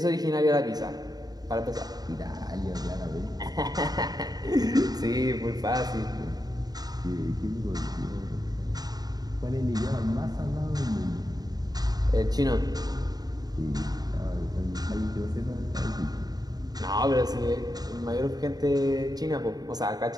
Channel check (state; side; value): late; left; 0.19 ms